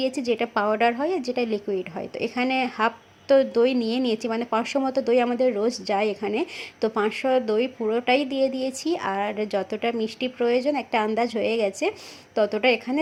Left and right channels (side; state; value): both; identical; correlation 1.00